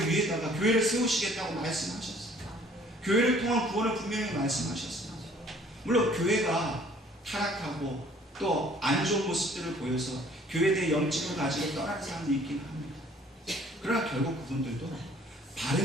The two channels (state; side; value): normal; both; correlation 0.56